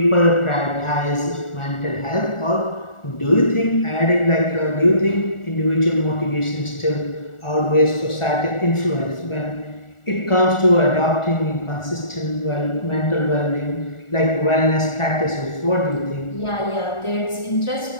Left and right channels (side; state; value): right; late; 1.4 ms